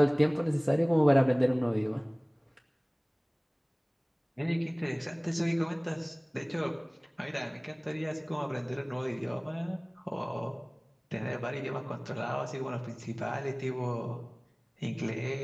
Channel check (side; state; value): both; identical; correlation 1.00